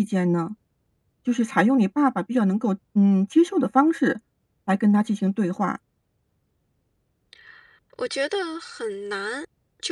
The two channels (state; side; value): identical; both; correlation 1.00